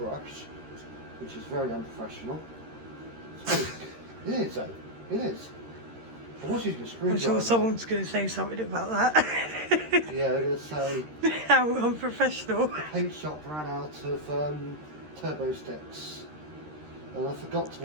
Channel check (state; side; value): late; left; 13 ms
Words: which is very unprofessional. It is though, it is. I was using a screwdriver. I'm sure someone's going to say something about that. Yeah, they're going to say how unprofessional. the paint shop ran out of turbo sticks and I forgot to